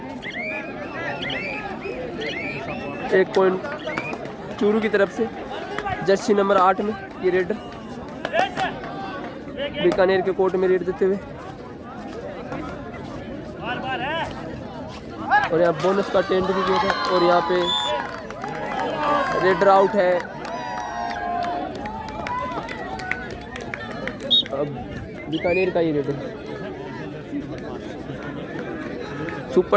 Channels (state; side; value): identical; both; correlation 1.00